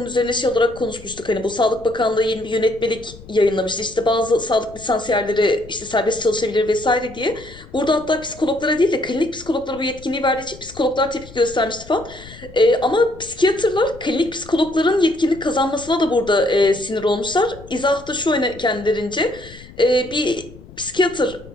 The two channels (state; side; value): noise; left; rumble, 19 dB below the sound